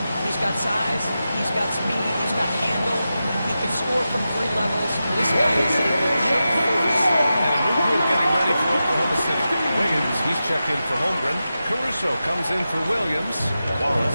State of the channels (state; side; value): inverted; both; correlation -0.92